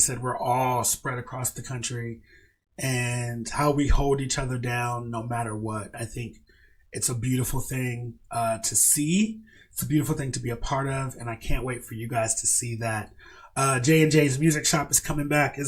we're all spread across the country, and how we hold each other down no matter what. I think it's a beautiful thing to see. It's a beautiful thing to be a part of, and I can't wait for you guys to see that. J&J's Music Shop is coming back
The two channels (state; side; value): identical; both; correlation 1.00